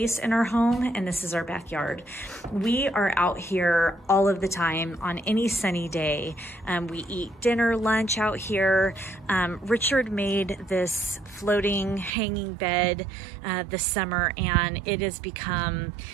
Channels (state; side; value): drops out; left; at 12.1 s